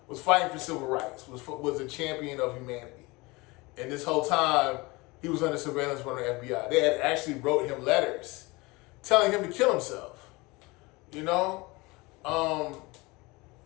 was fighting for civil rights, was a champion of humanity. And this whole time, he was under surveillance from the FBI. They had actually wrote him letters telling him to kill himself, I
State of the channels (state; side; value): quieter; right; 23.9 dB